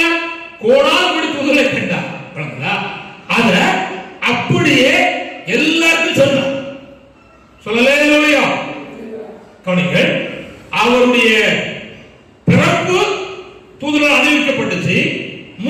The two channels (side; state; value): both; identical; correlation 1.00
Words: கோடால் தூதரை கண்டார். அத அப்படியே எல்லாருக்கும் சொன்னார். சொல்லலையா? கவனிங்கள், அவருடைய பிறப்பு தூதரால் அறிவிக்கப்பட்டுச்சு,